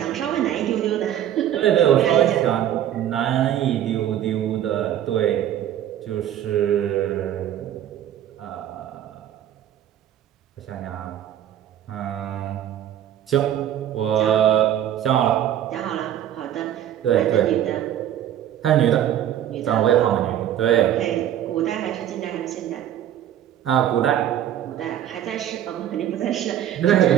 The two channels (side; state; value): left; quieter; 11.0 dB